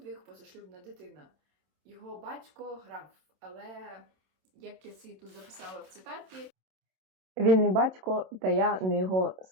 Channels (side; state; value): left; late; 27 ms